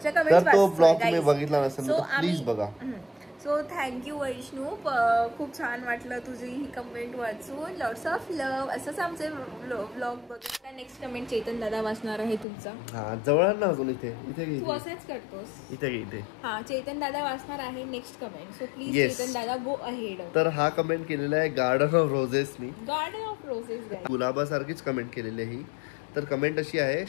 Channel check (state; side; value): drops out; right; at 12.5 s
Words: तर कमेंट्स तो ब्लॉग तुम्ही बघितला नसेल तर प्लीज बघा. So thank you Vaishnu. खूप छान वाटलं तुझी ही कमेंट वाचून. Lots of love. असंच आमचे ब्लॉग बघा. नेक्स्ट कमेंट चेतन दादा वाचणार आहे तुमचा. हा जवळ ना अजून इथे तू असेच करतोस. इथे हा चेतन दादा वाचणार आहे next comment. So please Chetan dada go ahead. तर हा कमेंट केलेला आहे गार्डन ऑफ रोजेसनी. Garden of roses. गुलाबासारखीच कमेंट केलेली आहे ही. तर कमेंट अशी आहे,